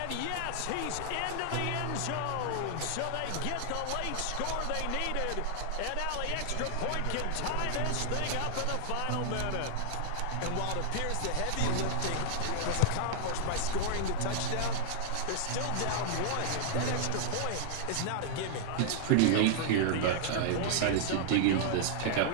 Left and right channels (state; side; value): different; both; correlation -0.01